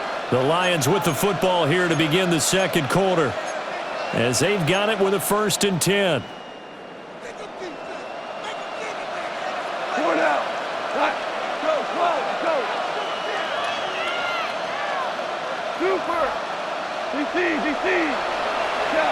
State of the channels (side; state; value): both; identical; correlation 1.00